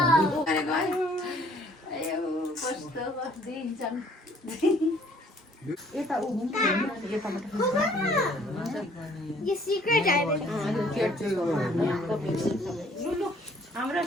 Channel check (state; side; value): normal; both; correlation 0.59